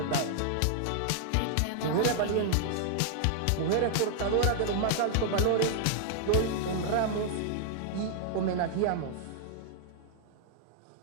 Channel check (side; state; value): both; different; correlation -0.01